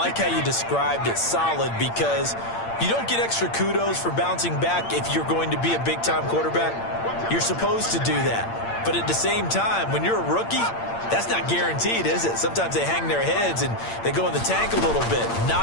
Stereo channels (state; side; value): late; right; 8.7 ms